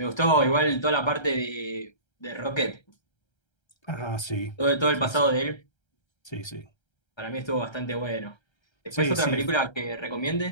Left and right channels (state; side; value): late; right; 1.3 ms